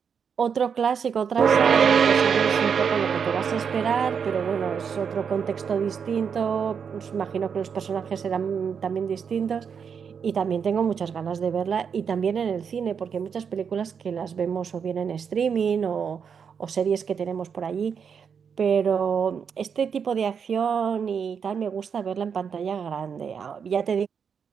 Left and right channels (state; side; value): quieter; left; 6.8 dB